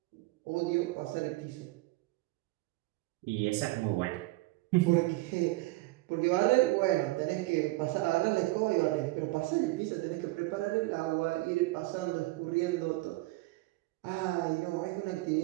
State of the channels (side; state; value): left; quieter; 20.3 dB